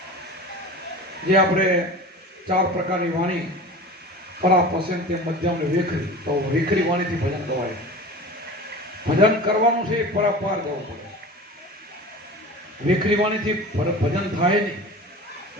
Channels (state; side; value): normal; both; correlation 0.36